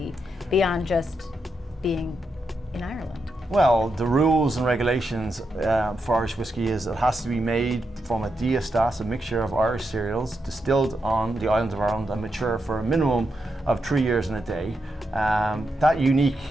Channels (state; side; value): normal; both; correlation 0.84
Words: beyond just being in Ireland? Well, the rules and regulations for Irish whiskey is it has to be made from a diastase, a mixture of Irish cereals, distilled on the island of Ireland and mature for a minimum of 3 years and a day. That unique,